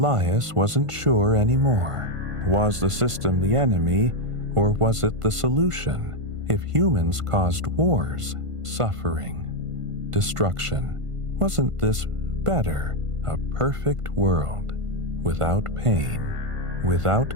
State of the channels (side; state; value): left; late; 1.5 ms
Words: wasn't sure anymore. Was the system the enemy, or was it the solution? If humans caused wars, suffering, destruction, wasn't this better, a perfect world, without pain,